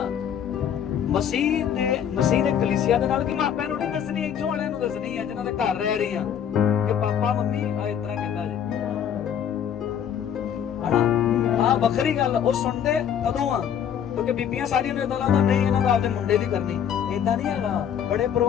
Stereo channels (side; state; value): right; quieter; 8.8 dB